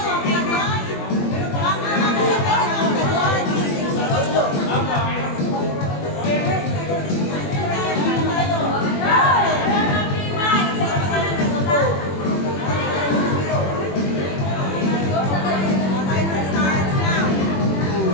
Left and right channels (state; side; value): late; right; 21 ms